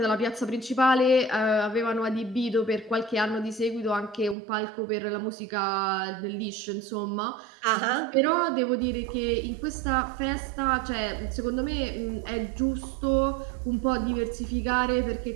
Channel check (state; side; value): drops out; left; at 4.4 s